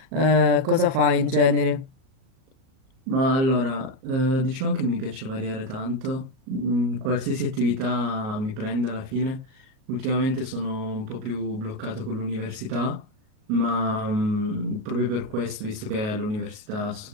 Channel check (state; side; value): late; left; 38 ms